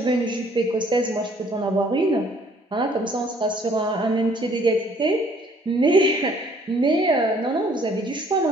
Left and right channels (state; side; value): normal; both; correlation 0.60